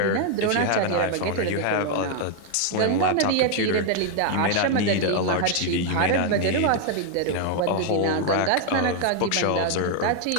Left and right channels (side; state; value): both; different; correlation 0.00